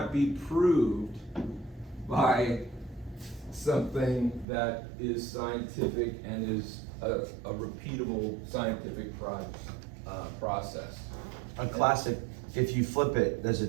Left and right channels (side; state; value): left; drops out; at 4.5 s